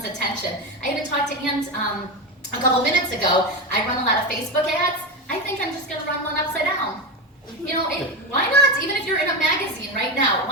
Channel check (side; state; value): both; normal; correlation 0.15